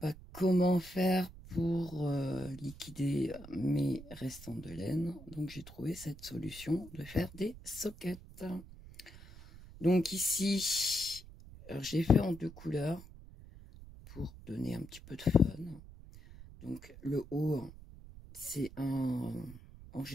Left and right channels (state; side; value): noise; right; rumble, 17 dB below the sound